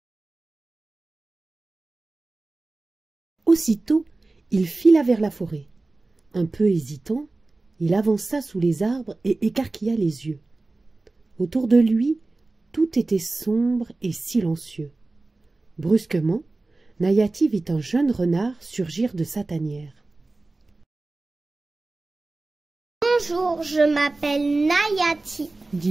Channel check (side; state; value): left; quieter; 3.2 dB